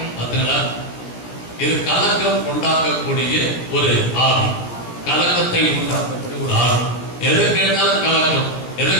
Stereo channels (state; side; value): late; right; 17 ms